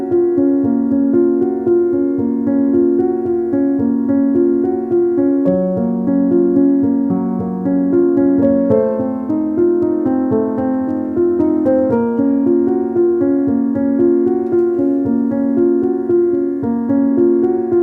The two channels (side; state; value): both; identical; correlation 1.00